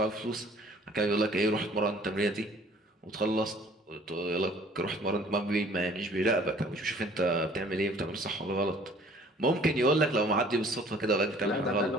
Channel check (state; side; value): normal; both; correlation 0.54